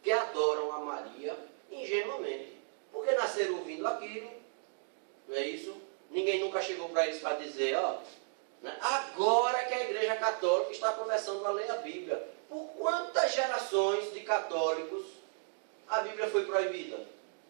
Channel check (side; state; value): left; silent; digital silence